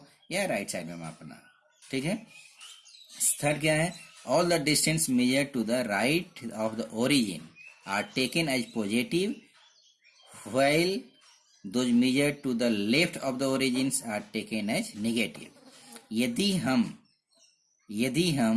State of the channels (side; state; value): both; identical; correlation 1.00